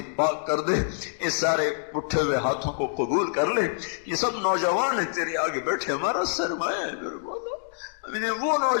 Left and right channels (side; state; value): right; silent; digital silence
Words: پاک کر دے، اس سارے اٹھے ہوئے ہاتھوں کو قبول کر لے۔ یہ سب نوجوان ہیں تیرے آگے بیٹھے، ہمارا سرمایہ ہے میرے مولا، انہیں وہ